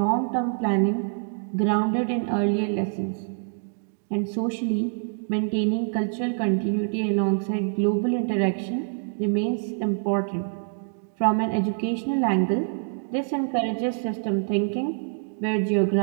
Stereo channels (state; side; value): silent; left; digital silence